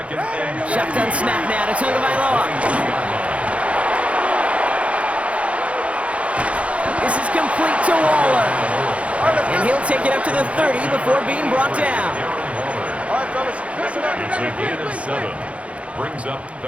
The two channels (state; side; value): late; left; 0.063 ms